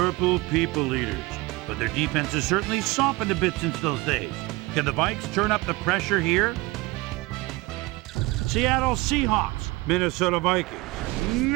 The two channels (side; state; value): left; quieter; 21.9 dB